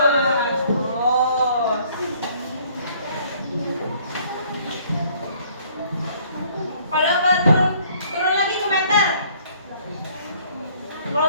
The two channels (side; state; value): both; inverted; correlation -0.60